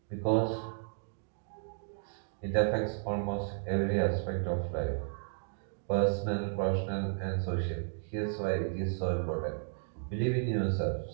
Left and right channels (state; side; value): silent; left; digital silence